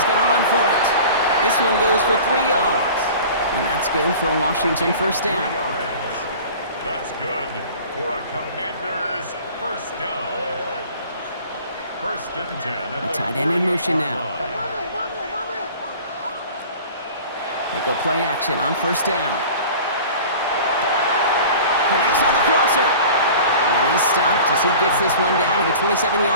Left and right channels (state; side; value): inverted; both; correlation -0.42